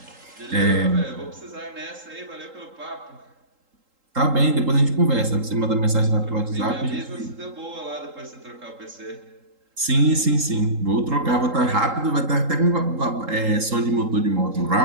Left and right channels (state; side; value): late; left; 3.8 ms